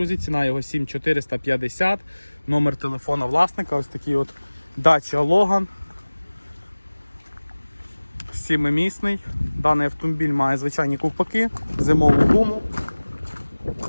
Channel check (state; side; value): inverted; both; correlation -1.00